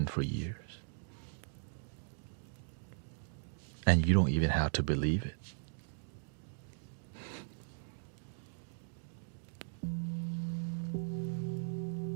for years. And you don't even have to believe it.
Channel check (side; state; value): left; silent; digital silence